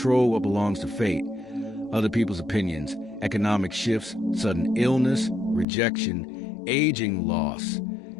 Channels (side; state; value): right; drops out; at 5.7 s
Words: what belongs to fate, other people's opinions, economic shifts, sudden illness, rejection, aging, loss,